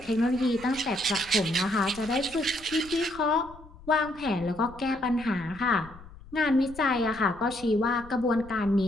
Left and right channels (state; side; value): noise; left; rumble, 20 dB below the sound